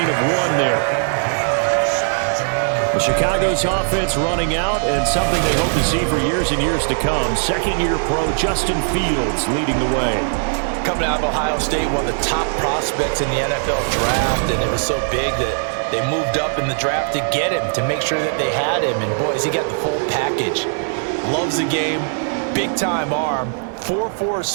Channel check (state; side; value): silent; left; 66 dB below the other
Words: of 1 there. The Chicago's offense running out, and something they hope to see for years and years to come. Second-year pro Justin Fields leading the way. Coming out of Ohio State, one of the top prospects in the NFL draft, and it was so big that they moved up in the draft to get him, to make sure that they had him. And, boys, he got the full package. Loves the game, big-time arm. 4.4